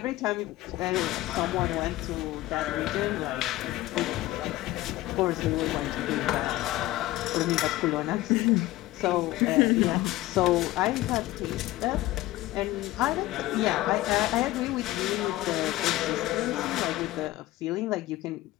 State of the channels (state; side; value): quieter; right; 16.9 dB